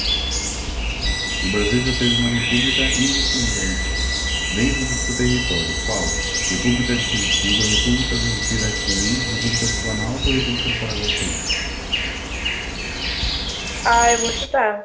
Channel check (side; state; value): both; identical; correlation 1.00